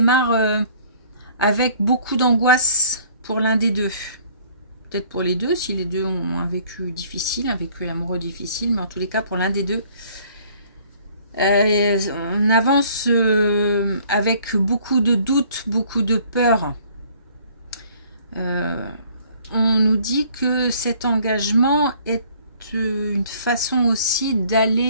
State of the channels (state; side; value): inverted; both; correlation -0.57